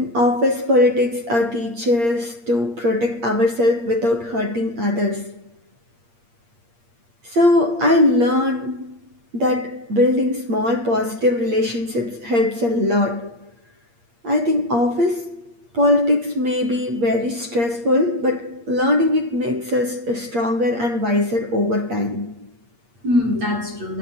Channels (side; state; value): left; late; 8.6 ms